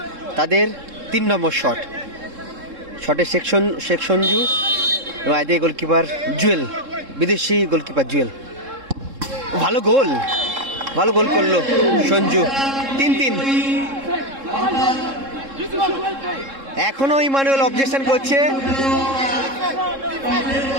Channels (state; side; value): late; left; 3.7 ms